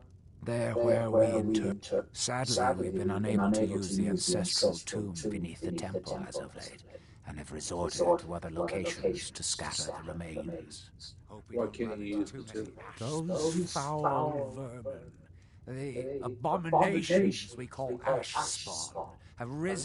There where we inter... Sadly, we've been unable to use the ancestral tomb beneath the temple as of late, and have resorted to other locations to scatter the remains. Why can't you use the tomb? Those foul vermin, the abominations we call ash spawn, have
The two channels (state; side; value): identical; both; correlation 1.00